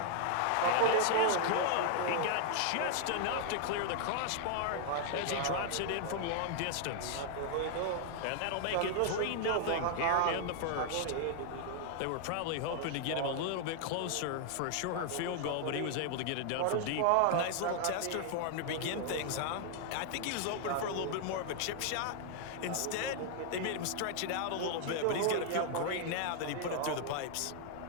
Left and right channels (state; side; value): different; both; correlation 0.00